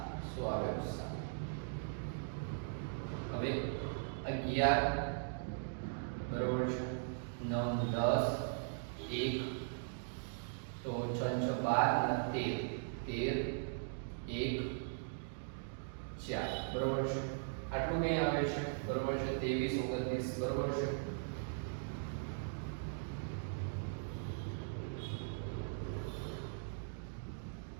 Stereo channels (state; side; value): silent; left; digital silence